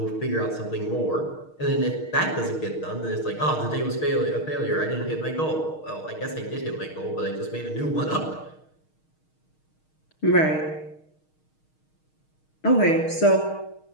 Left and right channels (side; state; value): right; late; 6.4 ms